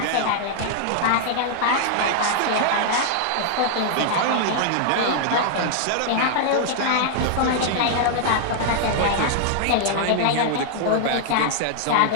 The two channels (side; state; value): both; different; correlation -0.01